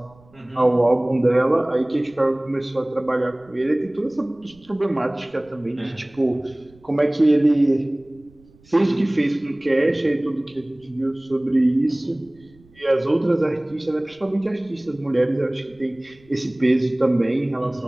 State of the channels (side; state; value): right; noise; rumble, 28 dB below the sound